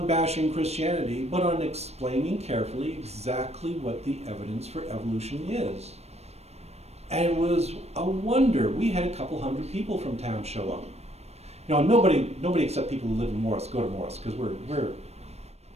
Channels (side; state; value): left; late; 0.31 ms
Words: bashing Christianity, but on explaining carefully exactly what the evidence for evolution is. And it was a wonder. We had a couple hundred people from town show up. You know, nobody except people who live in Morris go to Morris, because